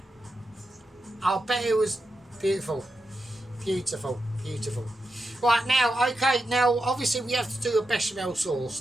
I'll bet it was beautiful. Beautiful. Right, now, okay, now, obviously we have to do a bechamel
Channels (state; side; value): normal; both; correlation 0.88